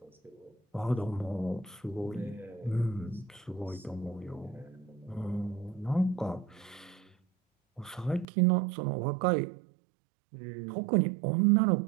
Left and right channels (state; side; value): drops out; left; at 8.2 s